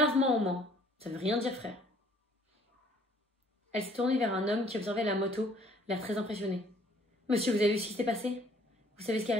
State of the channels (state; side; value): normal; both; correlation 0.58